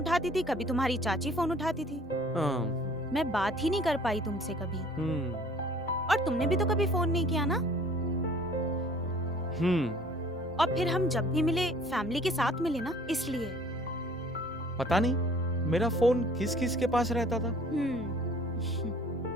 थी, कभी तुम्हारी चाची फोन उठाती थी. मैं बात ही नहीं कर पाई तुमसे कभी. और तुमने भी तो कभी फोन नहीं किया ना. और फिर हम जब भी मिले फैमिली के साथ मिले ना, इसलिए. पता नहीं मेरा फोन किस किस के पास रहता था।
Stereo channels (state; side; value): normal; both; correlation 0.52